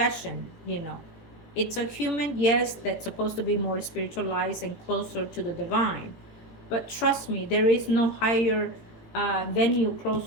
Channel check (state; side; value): late; right; 18 ms